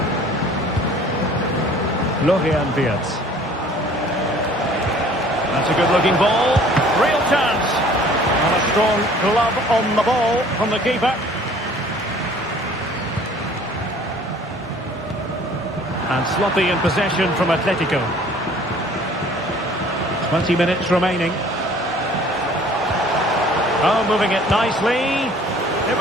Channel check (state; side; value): normal; both; correlation 0.52